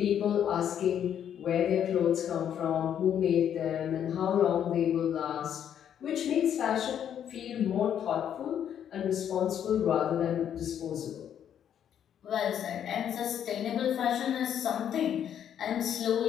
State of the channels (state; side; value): quieter; right; 9.4 dB